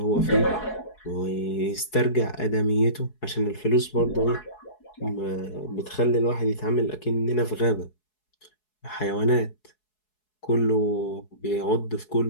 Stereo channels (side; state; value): right; late; 4.7 ms